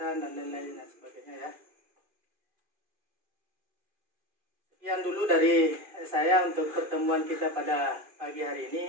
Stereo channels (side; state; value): left; late; 2.4 ms